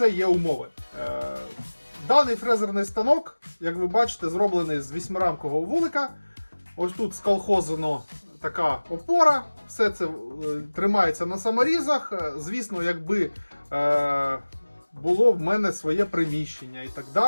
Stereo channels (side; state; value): both; inverted; correlation -1.00